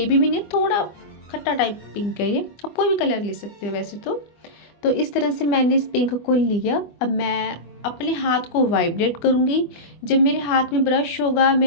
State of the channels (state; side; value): late; right; 24 ms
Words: भी नहीं, थोड़ा खट्टा टाइप पिंक है ये, आप कोई भी कलर ले सकते हो वैसे तो इस तरह से मैंने इस पिंक को लिया। अब मैं अपने हाथ को वाइब्रेट करूँगी। जब मेरे हाथ में ब्रश होगा,